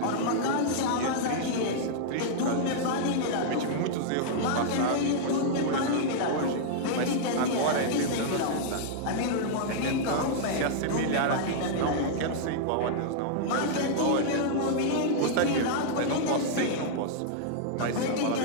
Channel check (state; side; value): different; both; correlation -0.02